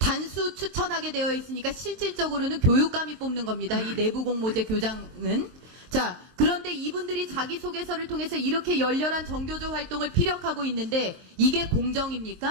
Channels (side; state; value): left; late; 23 ms